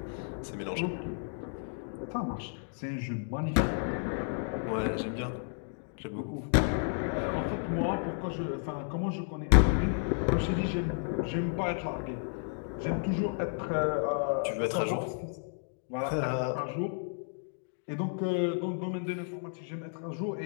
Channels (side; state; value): right; silent; 56 dB below the other